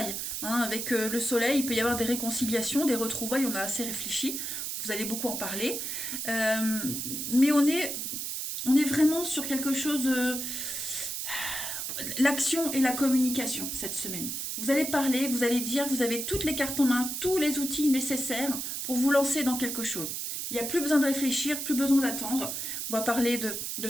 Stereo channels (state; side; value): noise; right; hiss, 4 dB below the sound